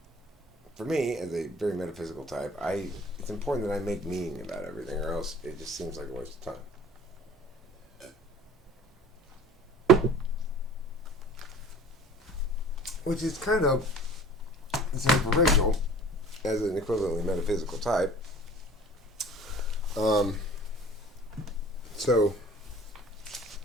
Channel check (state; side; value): normal; both; correlation 0.46